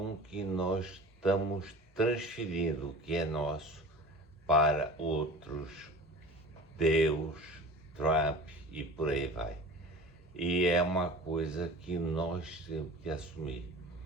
que nós estamos transferindo o que é nosso para outros, Deus, Trump e por aí vai. E é uma coisa que nós temos que assumir.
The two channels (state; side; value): normal; both; correlation 0.39